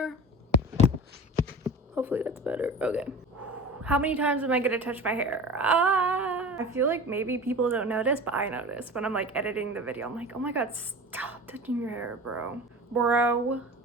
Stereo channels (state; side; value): normal; both; correlation 0.35